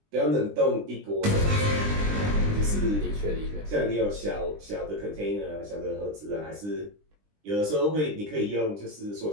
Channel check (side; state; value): left; late; 20 ms